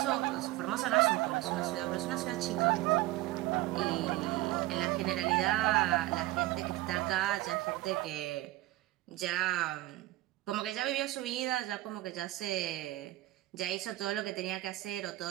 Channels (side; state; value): left; quieter; 17.4 dB